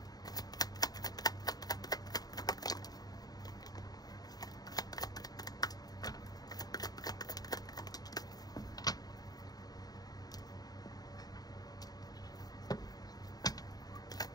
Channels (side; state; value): right; late; 0.19 ms